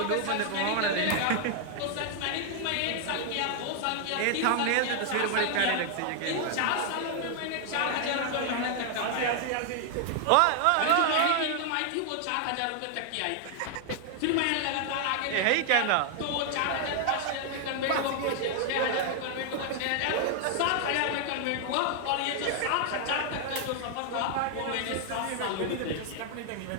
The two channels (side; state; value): both; different; correlation 0.00